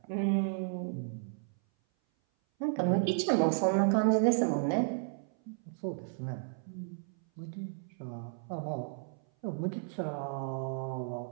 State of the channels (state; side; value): silent; left; 56 dB below the other